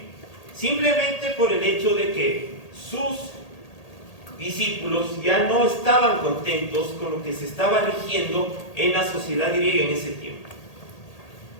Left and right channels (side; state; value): right; late; 1.8 ms